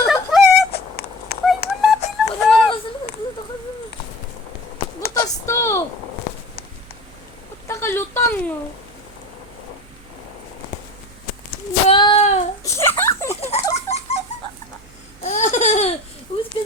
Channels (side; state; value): right; noise; hum, 24 dB below the sound